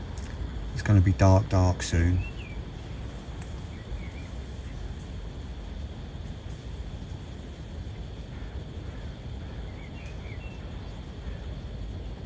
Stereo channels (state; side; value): identical; both; correlation 1.00